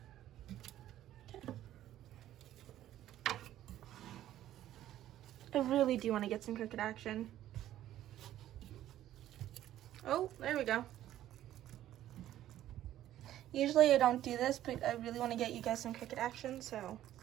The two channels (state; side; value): quieter; left; 12.8 dB